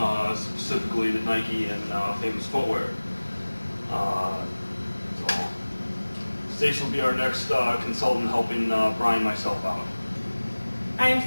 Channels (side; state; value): both; inverted; correlation -1.00